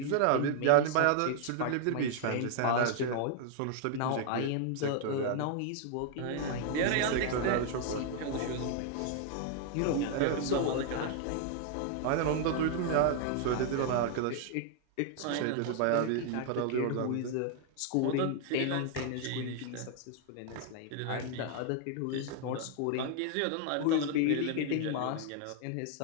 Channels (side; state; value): both; different; correlation 0.00